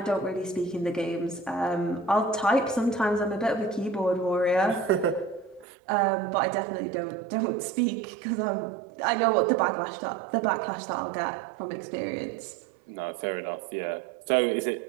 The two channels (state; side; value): drops out; left; at 5.7 s